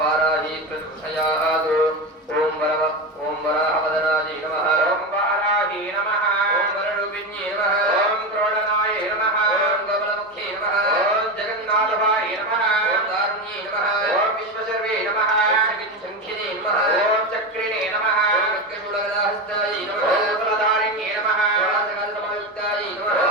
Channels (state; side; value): normal; both; correlation 0.18